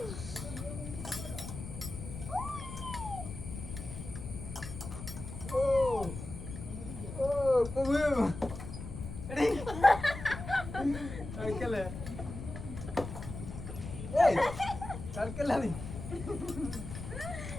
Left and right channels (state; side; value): noise; left; rumble, 9 dB below the sound